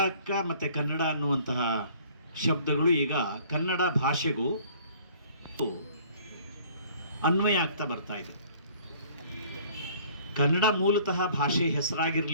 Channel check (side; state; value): both; inverted; correlation -0.54